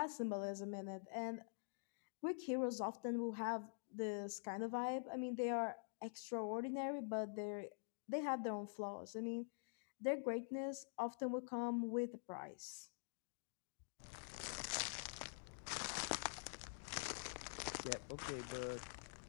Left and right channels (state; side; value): silent; right; digital silence